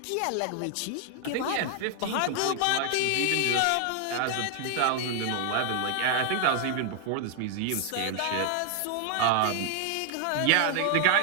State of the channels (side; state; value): both; different; correlation 0.00